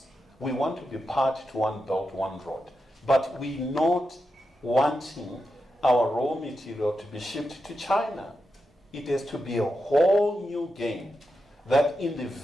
We want to be part to one belt, one road. But we're not wanting our raw material to be shipped to China. It has to be a whole new game that in the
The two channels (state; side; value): normal; both; correlation 0.87